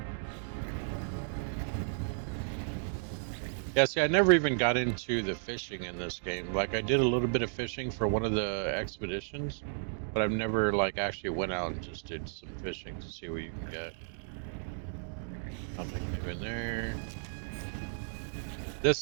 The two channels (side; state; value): left; silent; digital silence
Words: Yeah, see, I never even got into the fishing in this game. Like, I did a little bit of fishing for one of the expeditions, but I've never, like, actually went out and just did some fishing to see what you can get. Nothing new in there. This